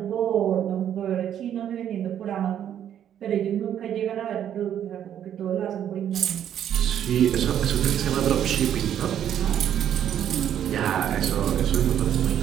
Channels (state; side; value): quieter; left; 10.0 dB